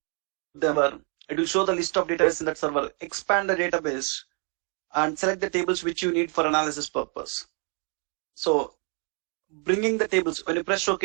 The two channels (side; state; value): left; quieter; 39.0 dB